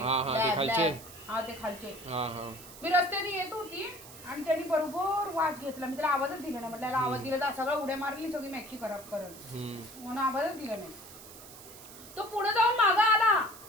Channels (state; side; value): noise; right; hiss, 17 dB below the sound